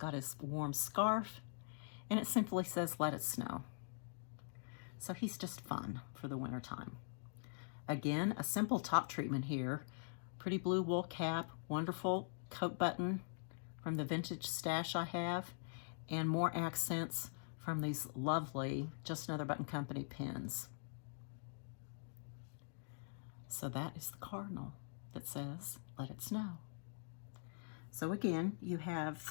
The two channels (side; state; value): right; silent; digital silence